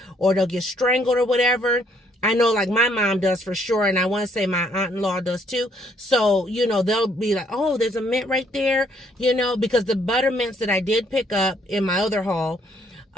or they'll get strangled or whatever. I know like my mom does for sure. And I want to say my aunt-in-law does too. So, you know, they'll be like, oh, there's a mint right there, you know, because the butter mints that I did pick up in my other haul,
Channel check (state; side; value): normal; both; correlation 0.67